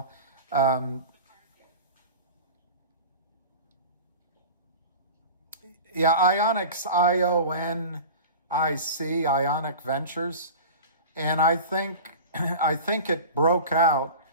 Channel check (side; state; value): both; inverted; correlation -0.34